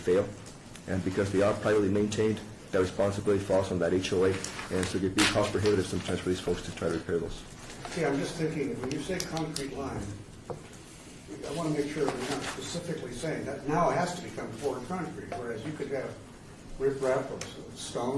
and because they are privately maintained, that responsibility falls on that HOA, and so it can be cost prohibitive sometimes for these folks to try to repair those. See, I'm just thinking, when you say concrete line, I want to make sure that we're not specifically saying that now it has to become poured concrete, whereas you could have riprap of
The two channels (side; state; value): both; identical; correlation 1.00